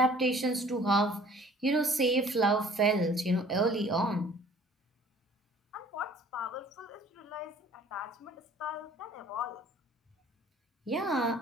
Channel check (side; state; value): both; normal; correlation 0.52